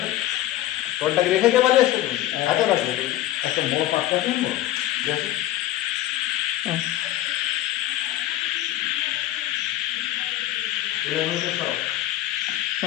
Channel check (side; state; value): right; quieter; 14.4 dB